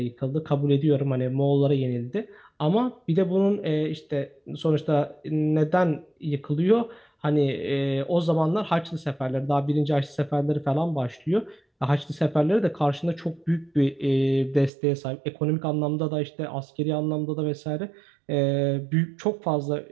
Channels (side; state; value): left; drops out; at 14.7 s